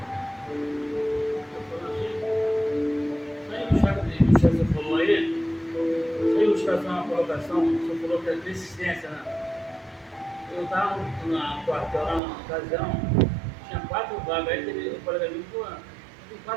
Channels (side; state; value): left; drops out; at 12.2 s